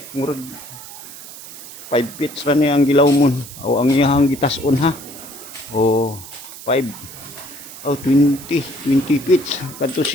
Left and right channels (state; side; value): noise; right; hiss, 14 dB below the sound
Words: murag 5 feet ra ni ang gilawmon. Aw ang iyang gitason ha. Oh, 5 oh 20 feet kadto